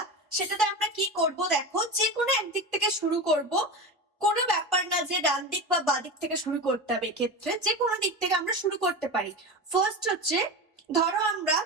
সেটাতে আমরা কি করব দেখো, যে কোনো একদিক থেকে শুরু করব। কোনো ব্যাপার না যে ডান দিক বা বাঁ দিক থেকে শুরু করতে হবে, এক্ষেত্রে যে কোনো দিক থেকে আমরা শুরু করতে পারি। ফার্স্ট হচ্ছে, ধরো আমরা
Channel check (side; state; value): both; normal; correlation 0.25